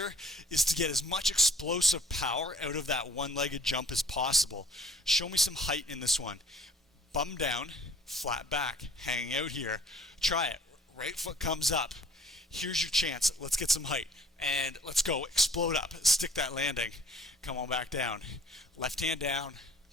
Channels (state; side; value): normal; both; correlation 0.55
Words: is to get as much explosive power out of that one-legged jump as possible. Show me some height in this one. Bum down, flat back, hanging out here. Try it. Right foot comes up. Here's your chance. Let's get some height. And let's go. Explode up. Stick that landing. Come on back down. Left hand down.